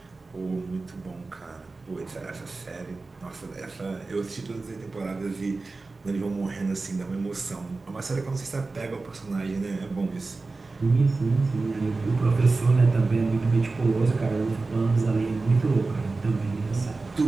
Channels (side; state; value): left; quieter; 3.7 dB